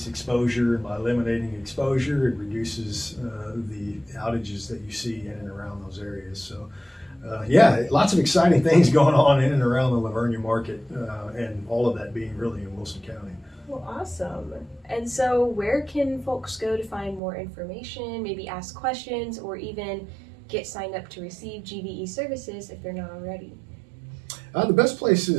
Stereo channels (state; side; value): drops out; left; at 17.2 s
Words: exposure, and by eliminating exposure, it reduces the outages that you see in and around those areas. So lots of exciting things going on in and around the Livonia market, and all of that being really in Wilson County. Well, awesome. And so where can folks go to find more information, maybe ask questions, or even get signed up to receive GVE services if they're not already? The best place